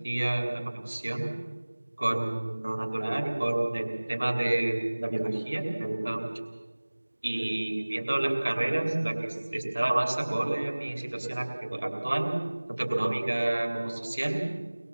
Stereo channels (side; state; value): both; inverted; correlation -1.00